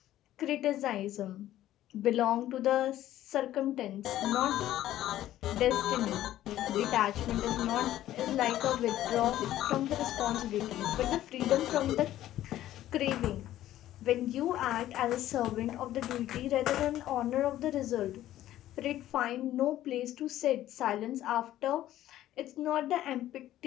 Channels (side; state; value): right; quieter; 13.5 dB